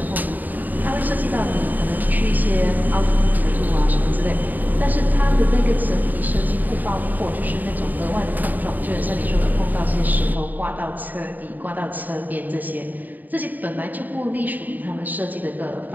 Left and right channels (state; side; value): late; left; 0.085 ms